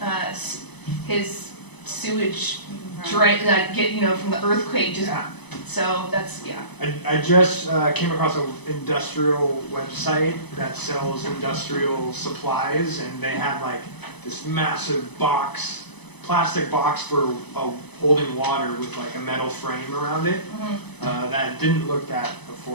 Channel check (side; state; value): right; late; 0.99 ms